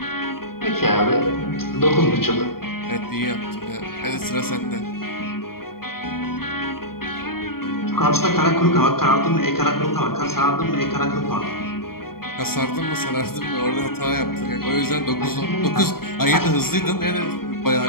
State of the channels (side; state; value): right; late; 0.93 ms